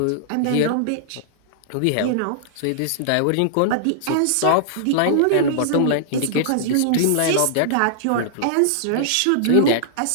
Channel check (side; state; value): both; different; correlation -0.01